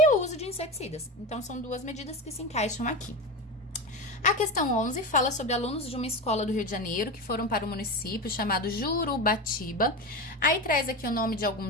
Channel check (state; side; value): normal; both; correlation 0.22